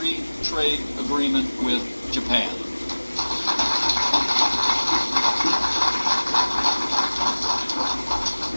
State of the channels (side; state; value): both; inverted; correlation -1.00